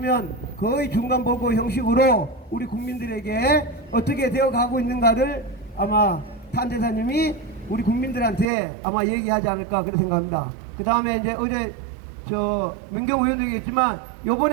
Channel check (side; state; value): left; drops out; at 8.5 s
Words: 거의 중간 보고 형식으로 우리 국민들에게 어떻게 되어 가고 있는가를 아마 탄대사님이 우리 국민들한테 아마 얘기하지 않을까 그렇게 생각합니다. 그 다음에 이제 어제 민경우 의원도 얘기했지만